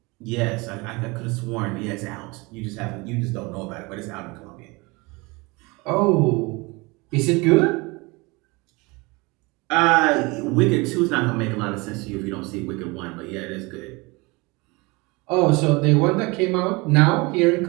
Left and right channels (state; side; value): quieter; left; 25.6 dB